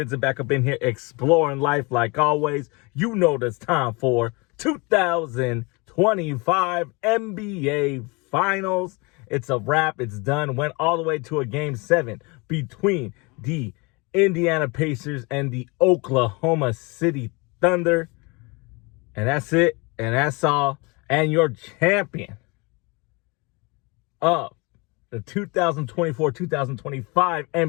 back up in here exploring life like always. You know it's time for 2025 NBA Finals. It's a wrap. It's done. Went all the way to a Game 7 between the Indiana Pacers and the Oklahoma City Thunder. And that's it. And that's all. And your champion of the 2024-2025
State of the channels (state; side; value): quieter; right; 27.9 dB